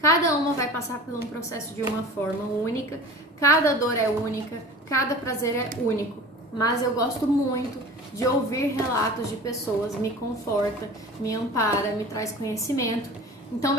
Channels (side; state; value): both; normal; correlation 0.39